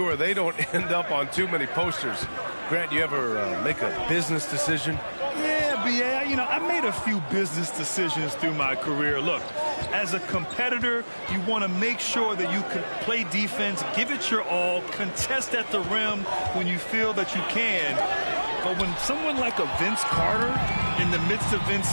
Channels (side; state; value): both; inverted; correlation -1.00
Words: they don't end up on too many posters. Grant, you ever make a business decision? Yeah, BA, you know, I made a few business decisions through my career. Look, as a competitor, you want to make sure that you can play defense, give it your all, contest at the rim when you feel that you can. But when someone like a Vince Carter in the midst of